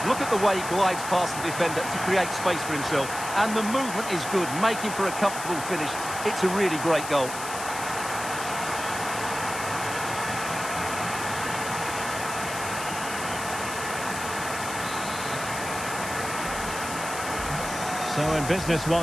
Look at the way he glides past the defender to create space for himself. And the movement is good, making for a comfortable finish. It's a really great goal. So in business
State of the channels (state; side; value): noise; left; hiss, 9 dB below the sound